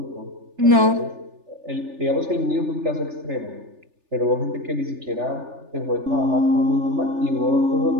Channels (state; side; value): late; left; 3.4 ms